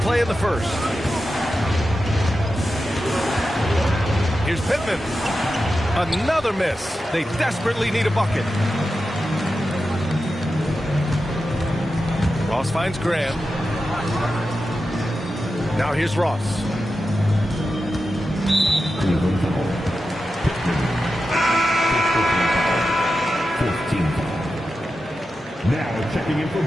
in the first. Here's Pittman. Another miss. They desperately need a bucket. Ross finds Graham. Now here's Ross. Cleveland foul. 14 foul. Now checking in for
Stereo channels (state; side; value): normal; both; correlation 0.91